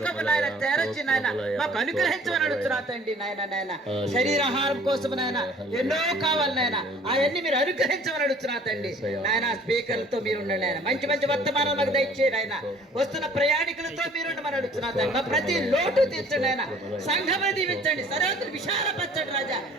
నాయన తెరచి నాయన మాకు అనుగ్రహించమని అడుగుతున్నారండి నాయన. నాయన శరీరాహారం కోసం నాయన ఎన్నో కావాలి నాయన, అవన్నీ మీరు అనుగ్రహించమని అడుగుతున్నారండి నాయన. స్పీకర్లతో మీరు ఉండండి ఆయన. మంచి మంచి వర్తమానం మాకు దయచేయండి ఆయన. వస్తున్న ప్రయాణికులతో మీరు ఉండమని అడుగుతున్నారండి. మా ప్రతి లోటు తీర్చండి ఆయన. సంఘమును దీవించండి, సర్వత్ర విశాలపరచండి రాజా.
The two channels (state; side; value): normal; both; correlation 0.53